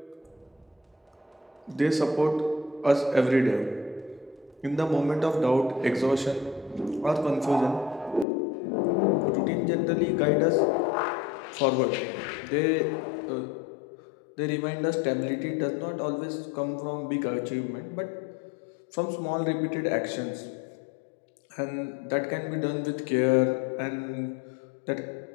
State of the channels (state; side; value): drops out; right; at 8.2 s